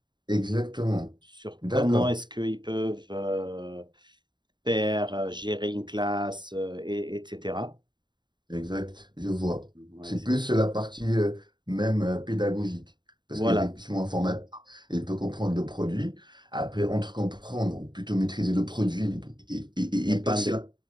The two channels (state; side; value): late; left; 0.22 ms